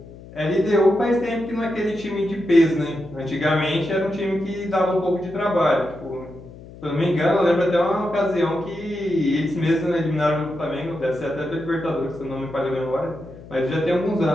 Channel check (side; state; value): left; noise; hum, 18 dB below the sound